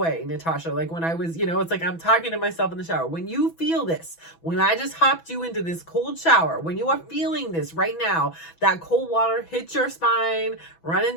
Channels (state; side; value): late; right; 6.0 ms